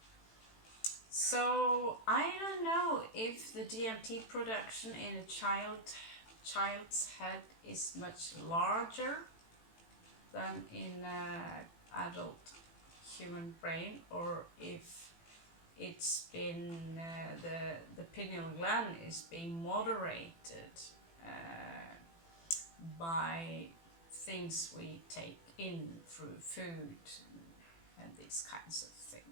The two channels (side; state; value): right; late; 18 ms